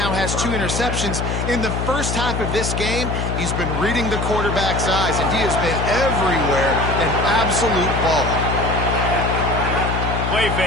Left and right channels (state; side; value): noise; left; hum, 2 dB below the sound